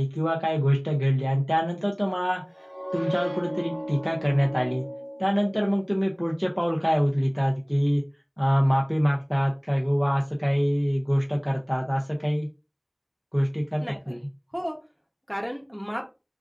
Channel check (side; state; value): both; identical; correlation 1.00